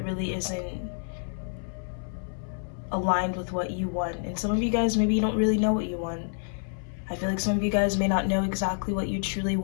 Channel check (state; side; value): silent; right; 59 dB below the other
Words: really isn't aligned with what you want. And some of you guys, maybe you don't really know what you want. I feel like some of you guys may not know exactly what you truly